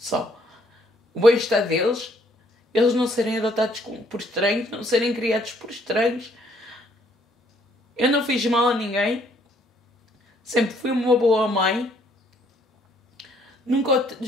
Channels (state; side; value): normal; both; correlation 0.66